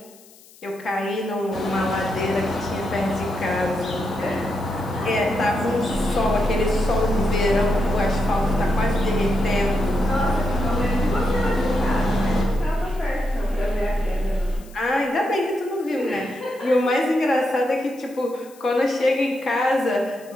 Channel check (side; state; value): left; noise; hiss, 25 dB below the sound